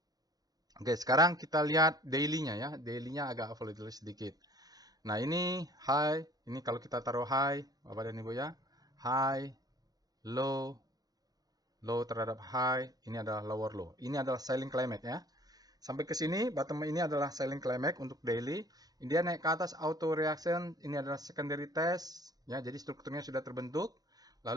Oke, sekarang kita lihat daily-nya ya. Daily-nya agak volatile sedikit. Nah, ini high. Ini kalau kita taruh high, Bapak dan Ibu ya. High, low, low terhadap high. Ini adalah lower low. Ini adalah selling climate ya. Sampai ke sini, bottom ini adalah selling climax untuk daily. Dia naik ke atas auto reaction, ini adalah secondary test. Ya, jadi strukturnya sudah terbentuk.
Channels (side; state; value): left; late; 0.19 ms